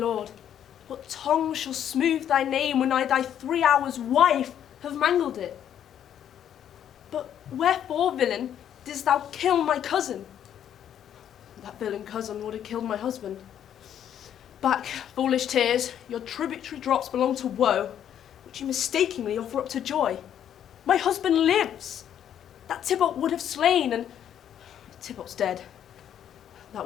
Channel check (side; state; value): right; quieter; 9.8 dB